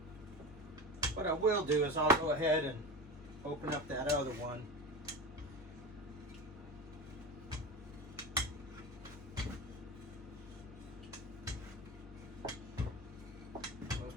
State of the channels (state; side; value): normal; both; correlation 0.26